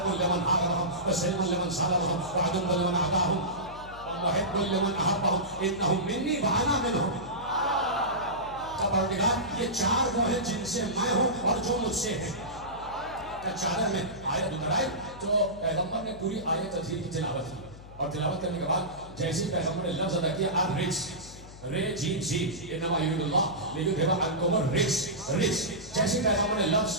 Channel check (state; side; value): noise; left; hum, 18 dB below the sound